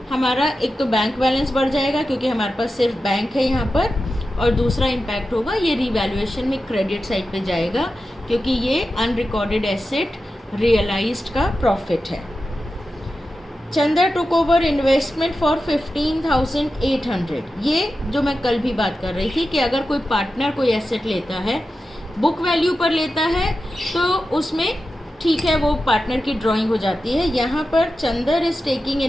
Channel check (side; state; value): both; normal; correlation 0.92